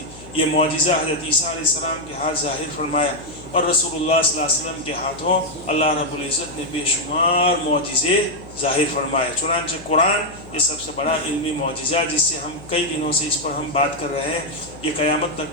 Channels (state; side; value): noise; left; hum, 19 dB below the sound